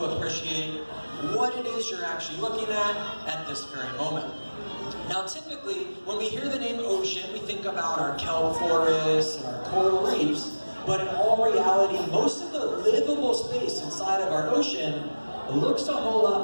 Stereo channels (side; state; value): both; inverted; correlation -1.00